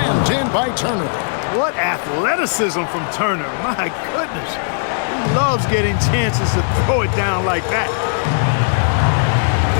in by Turner. What athleticism from Turner. My goodness. He loves getting chances to throw it down like that.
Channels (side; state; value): right; silent; digital silence